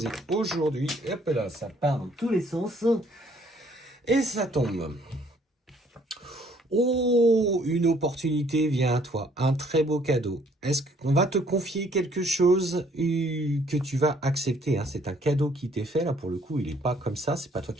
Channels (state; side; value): normal; both; correlation 0.62